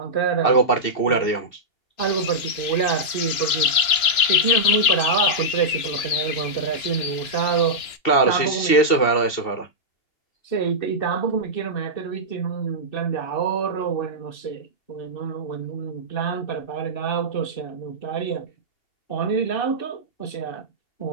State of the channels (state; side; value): late; right; 2.9 ms